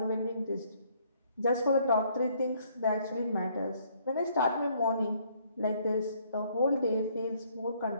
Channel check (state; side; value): inverted; both; correlation -0.65